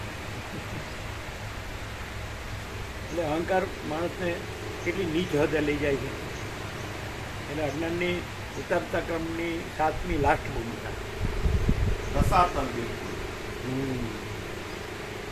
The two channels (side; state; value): both; identical; correlation 1.00